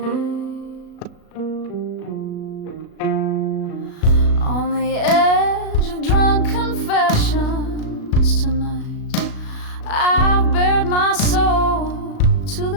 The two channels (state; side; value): late; right; 36 ms